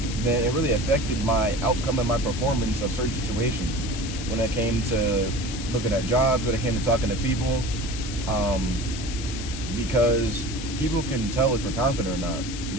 then it really affected my outcome and my performance of certain situations. When it came to looking at jobs, when it came to talking to people, because people can tell if you're confident or not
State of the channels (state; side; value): noise; left; hiss, 10 dB below the sound